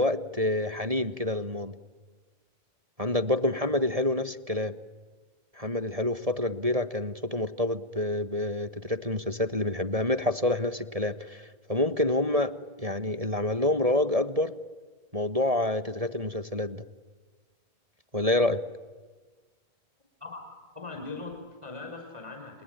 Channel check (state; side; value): late; left; 1.7 ms